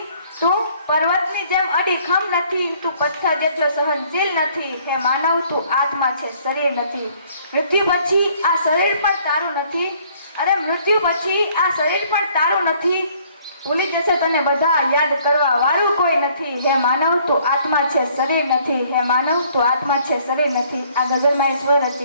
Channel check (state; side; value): inverted; both; correlation -0.61